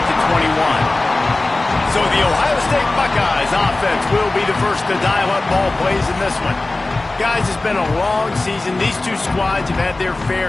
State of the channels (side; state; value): right; quieter; 3.0 dB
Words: the 21. So the Ohio State Buckeyes offense will be the first to dial up ball plays in this one. Guys, it's been a long season. These two squads have had their